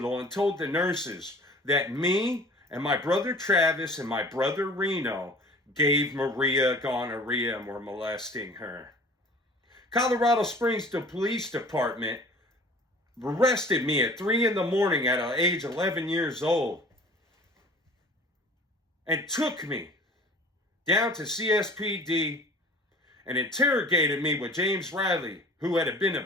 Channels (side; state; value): both; normal; correlation 0.45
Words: and told the nurses that me and my brother Travis and my brother Reno gave Maria gonorrhea and were molesting her. Colorado Springs Police Department arrested me at 3 a.m. at age 11 years old and took me down to CSPD and interrogated me with James Riley, who had been